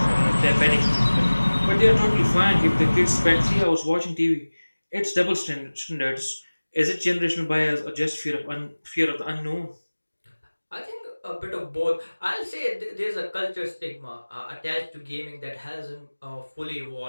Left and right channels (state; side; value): inverted; both; correlation -1.00